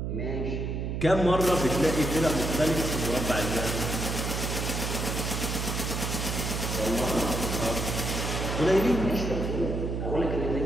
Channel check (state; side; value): noise; right; hum, 2 dB below the sound